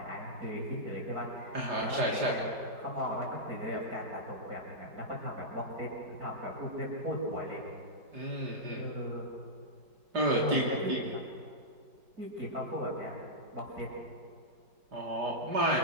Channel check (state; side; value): late; left; 4.9 ms